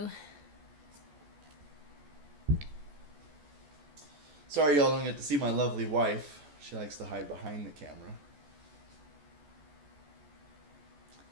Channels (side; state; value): left; late; 14 ms